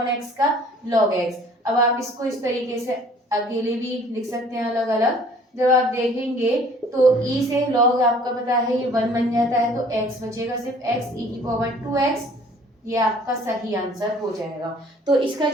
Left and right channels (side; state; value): both; normal; correlation 0.54